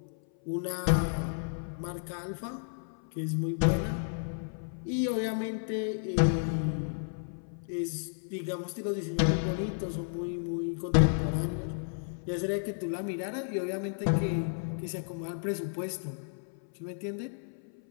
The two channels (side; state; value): right; silent; 56 dB below the other